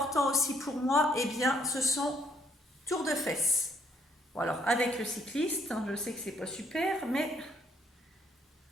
aussi pour moi? Ce sont tours de fesses. Bon, alors, avec le cycliste, je sais que c'est pas super, mais...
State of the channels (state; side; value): normal; both; correlation 0.67